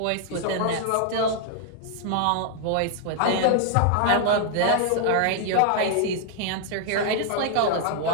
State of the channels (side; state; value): both; different; correlation 0.00